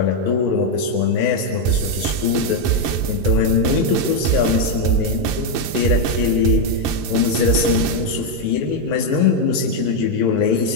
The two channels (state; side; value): late; left; 5.4 ms